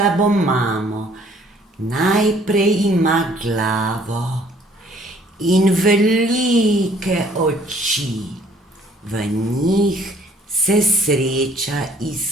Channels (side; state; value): both; normal; correlation 0.59